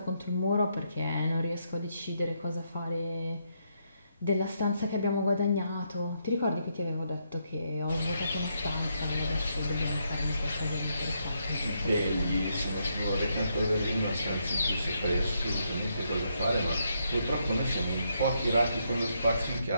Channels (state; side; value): inverted; both; correlation -0.77